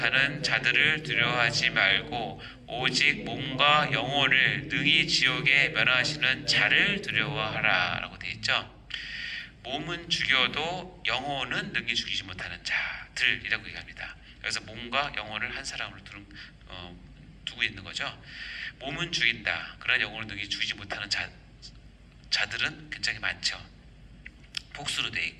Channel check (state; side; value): identical; both; correlation 1.00